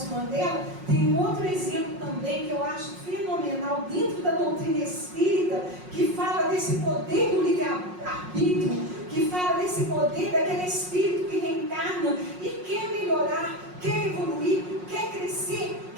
Mandela, tem um outro exemplo também que eu acho fenomenal dentro da doutrina espírita, que fala desse poder do livre-arbítrio, que fala desse poder daquele espírito que reencarna e quer melhorar, quer evoluir, quer crescer,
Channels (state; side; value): late; left; 5.5 ms